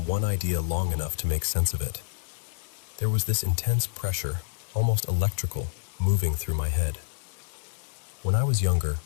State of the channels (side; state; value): right; silent; digital silence